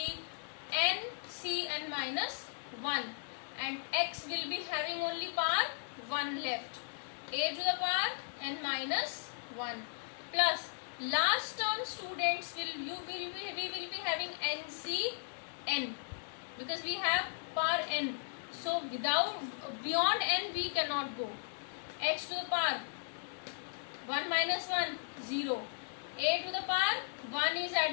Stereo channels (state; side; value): silent; right; digital silence